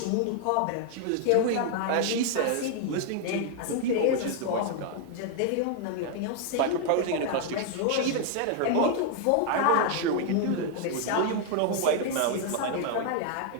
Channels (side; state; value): both; different; correlation 0.00